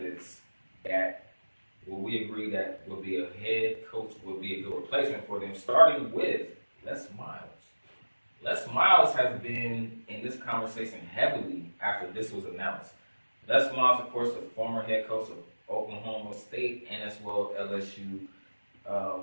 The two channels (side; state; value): both; inverted; correlation -1.00